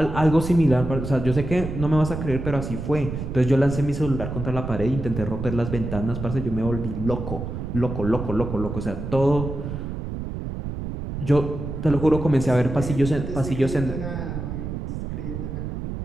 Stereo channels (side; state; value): right; noise; rumble, 6 dB below the sound